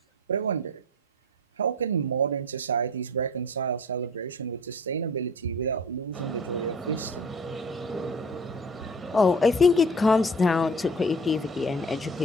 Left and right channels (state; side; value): normal; both; correlation 0.44